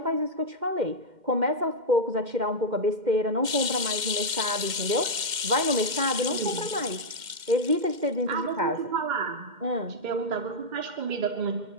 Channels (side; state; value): left; late; 2.1 ms